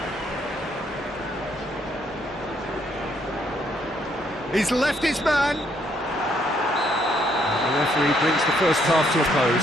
He's left his man. The referee brings the first half to a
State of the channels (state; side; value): normal; both; correlation 0.70